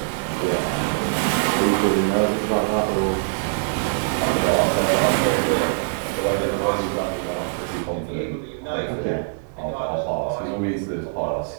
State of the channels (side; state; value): left; silent; digital silence